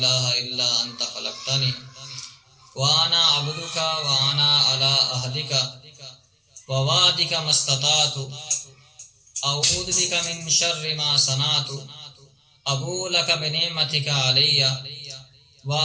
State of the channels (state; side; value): identical; both; correlation 1.00